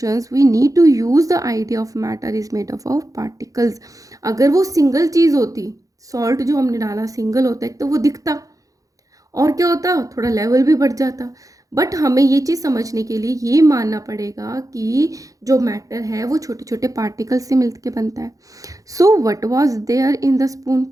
we need to use the idea of matter is made of particles. अगर वो सिंगल चीज़ होती, सॉल्ट जो हमने डाला सिंगल होता है, तो वो दिखता और क्या होता, थोड़ा लेवल भी बढ़ जाता। बट हमें ये चीज़ समझने के लिए ये मानना पड़ेगा कि जो मैटर है वो छोटे छोटे पार्टिकल से मिलके बनता है। So what was there in the spoon,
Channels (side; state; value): left; late; 0.17 ms